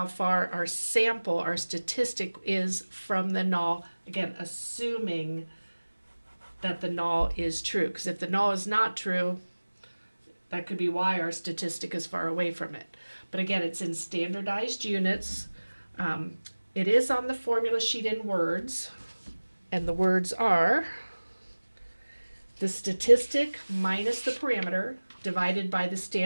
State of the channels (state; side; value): inverted; both; correlation -1.00